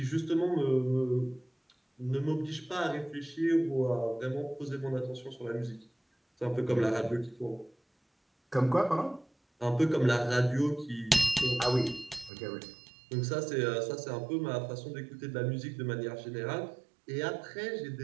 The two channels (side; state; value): left; drops out; at 12.3 s